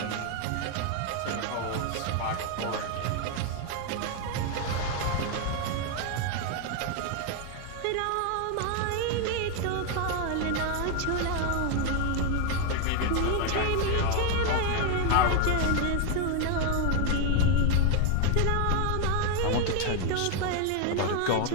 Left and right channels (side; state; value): both; different; correlation 0.01